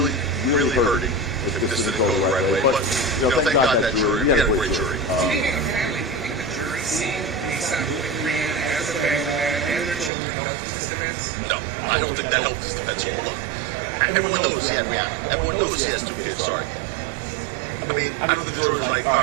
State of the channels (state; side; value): drops out; left; at 10.1 s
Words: really hurting if this didn't go the right way. But, you know, thank God that jury, we had a great jury. Speaking of family, do you think the jury seen ASAP Rihanna as a family man and their children helped this event? No, I don't think that helps this at all. Look, everyone knows he has Rihanna. Everyone knows he has 2 kids, sorry. I mean, the jury's like, all